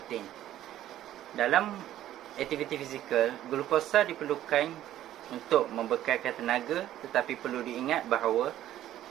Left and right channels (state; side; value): quieter; left; 12.8 dB